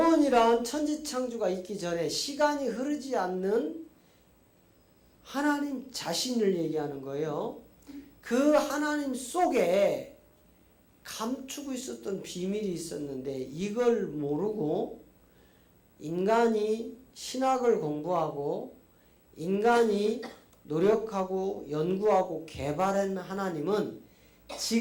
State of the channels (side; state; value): both; identical; correlation 1.00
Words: 천지창조가 있기 전에 시간이 흐르지 않는 하나님 자신을 얘기하는 거예요. 그 하나님 속에 감추고 있었던 비밀이 있었는데 이걸 모르고 인간이 신학을 공부하고 인간이 노력하고 연구하고 개발한 하나님은